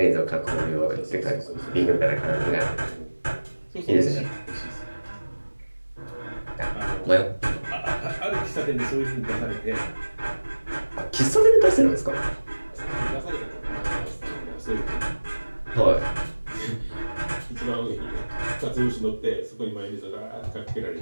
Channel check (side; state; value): both; inverted; correlation -1.00